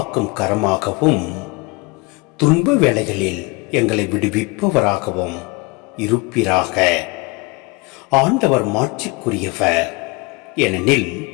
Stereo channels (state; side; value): quieter; right; 26.3 dB